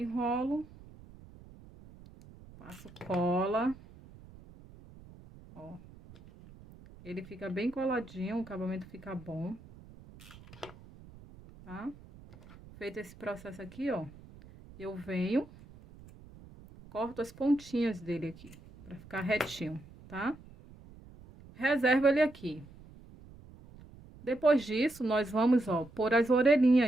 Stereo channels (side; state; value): right; noise; rumble, 20 dB below the sound